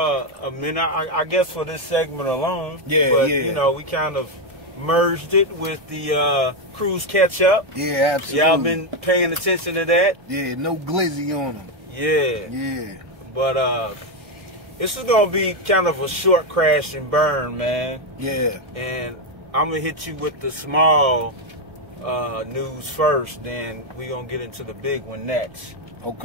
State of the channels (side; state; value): left; late; 1.7 ms